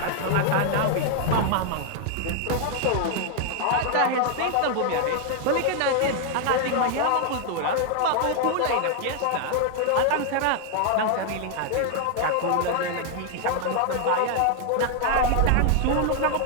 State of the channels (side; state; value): both; different; correlation 0.00